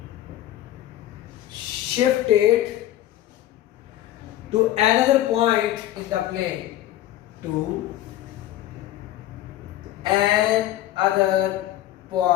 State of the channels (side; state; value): right; quieter; 13.7 dB